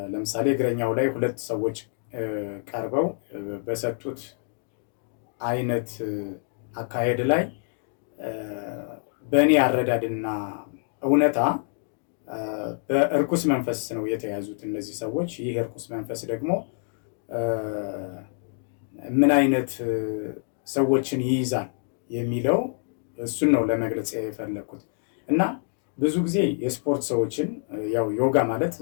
ለምሳሌ እግረኛው ላይ 2 ሰዎች ቀርበው በሰጡት አይነት አካሄድ ላይ በእኔ አረዳድና እውነታ በእርኩስ መንፈስ ነው የተያዙት እነዚህ ሰዎች። ይህ እርኩስ መንፈስ ደግሞ ምን አይነት ሰዎችን ይይዛል የሚለው እሱን ነው ለመግለጽ የፈለኩት እና ብዙ ጊዜ የስፖርት ሰዎችን ያው ዮጋ ማለት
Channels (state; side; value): silent; right; 61 dB below the other